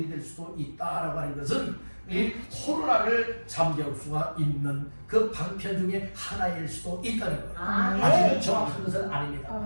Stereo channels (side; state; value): both; inverted; correlation -1.00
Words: 될 수도 있다라고 하는 것은 이 코로나를 잠재울 수가 있는 그 방편 중에 하나일 수도 있다는 거예요. 아직은 정확한 것은